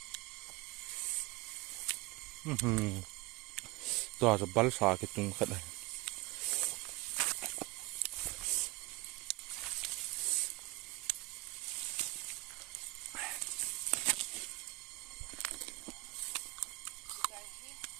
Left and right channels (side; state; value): left; quieter; 23.2 dB